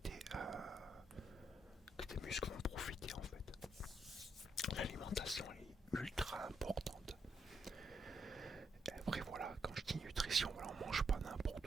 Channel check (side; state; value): both; normal; correlation 0.79